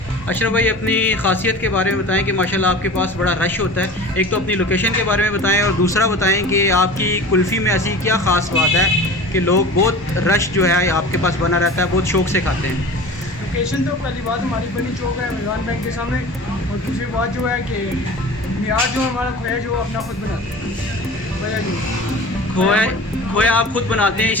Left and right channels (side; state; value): both; normal; correlation 0.37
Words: अशरफ भाई, अपनी ख़ासियत के बारे में बताएं कि माशाल्लाह आपके पास बड़ा रश होता है। एक तो अपनी लोकेशन के बारे में बताएं और दूसरा बताएं कि आपकी कुल्फ़ी में ऐसी क्या ख़ास बात है कि लोग बहुत रश जो है आपके पास बना रहता है, बहुत शौक़ से खाते हैं। लोकेशन तो पहली बात हमारी बनी चौक है, मिलान बैंक के सामने। और दूसरी बात जो है कि मियार जो हमारा खोया जो अपना खुद बनाते हैं, खोया आप खुद बनाते हैं,